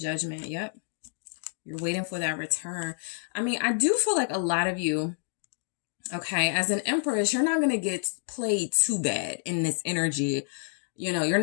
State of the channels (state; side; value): silent; right; 59 dB below the other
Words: Yep. You're waiting for that return. I mean, I do feel like a lot of you, okay, as an Empress, you're not going to get played too bad in this energy. You're